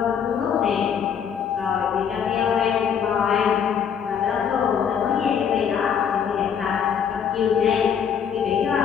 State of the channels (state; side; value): quieter; right; 7.7 dB